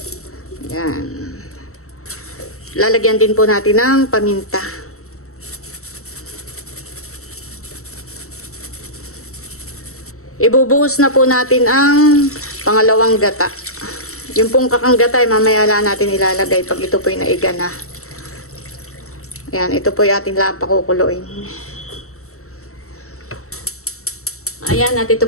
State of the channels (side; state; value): right; late; 0.64 ms